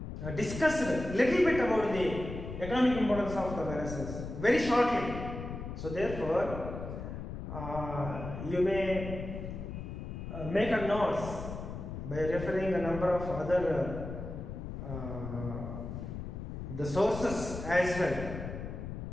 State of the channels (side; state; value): left; noise; rumble, 7 dB below the sound